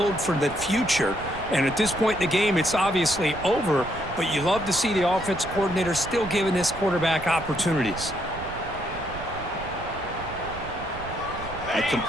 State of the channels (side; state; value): right; noise; rumble, 12 dB below the sound